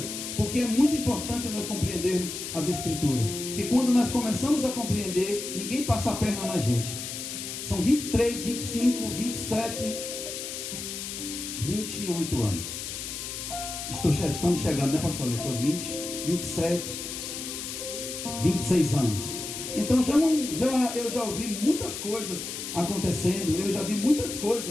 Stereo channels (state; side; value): noise; left; hiss, 6 dB below the sound